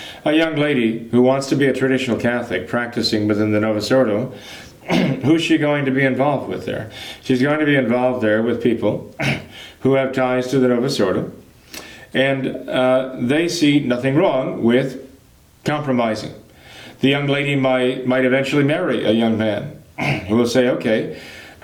A young lady who wants to be a traditional Catholic practicing within the Novus Ordo, who's she going to be involved with there? She's going to be involved there with people who have ties to the Novus Ordo, and they see nothing wrong with compromising. The young lady might eventually marry a young man who will say, okay,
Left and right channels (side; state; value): both; identical; correlation 1.00